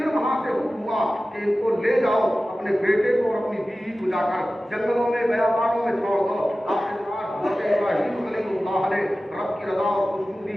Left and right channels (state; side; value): normal; both; correlation 0.96